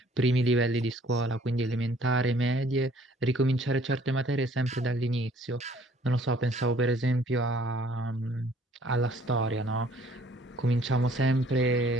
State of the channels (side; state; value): both; normal; correlation 0.58